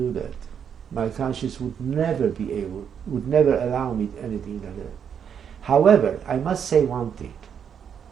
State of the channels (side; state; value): left; quieter; 7.9 dB